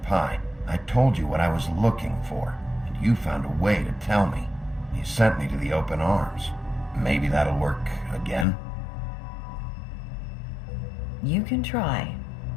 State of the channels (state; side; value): drops out; right; at 8.5 s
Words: Pie, I told you what I was looking for, and you found a way to tell me. You sent me to the open arms. Maybe that'll work again? You can try.